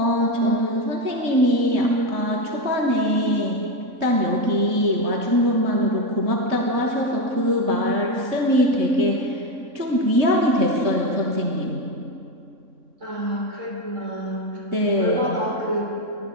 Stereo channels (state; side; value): late; left; 3.6 ms